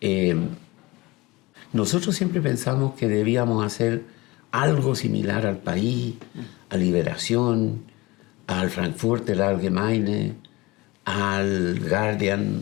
Nosotros siempre pensamos que debíamos hacer algo similar al País, a Liberación, al Frankfurter Allgemeine, al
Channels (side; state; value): right; quieter; 21.9 dB